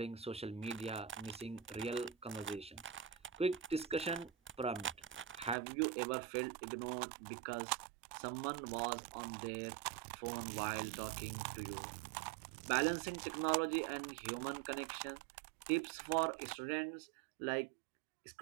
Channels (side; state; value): left; drops out; at 5.6 s